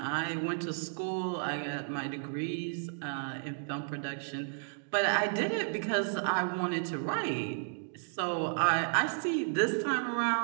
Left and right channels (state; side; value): silent; left; digital silence